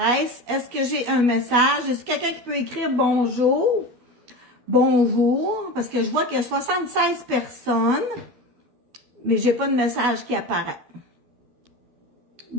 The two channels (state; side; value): late; left; 12 ms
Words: Est-ce que j'ai un message? Est-ce quelqu'un qui peut écrire bonjour? Bonjour, parce que je vois qu'il y a 76 personnes, mais j'ai pas de message qui apparaît.